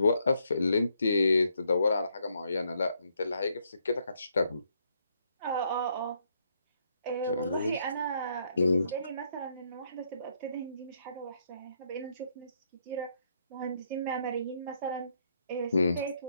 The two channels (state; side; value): inverted; both; correlation -0.73